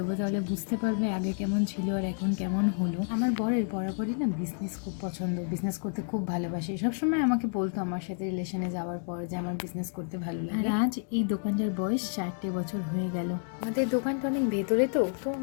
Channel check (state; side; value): silent; right; 58 dB below the other